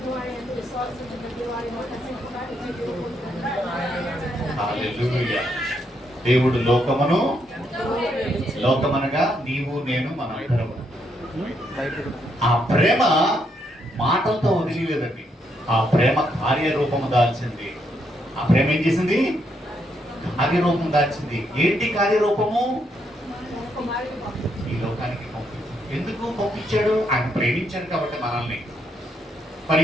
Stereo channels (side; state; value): both; normal; correlation 0.77